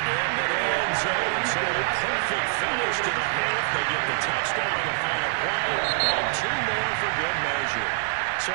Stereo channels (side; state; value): left; silent; 56 dB below the other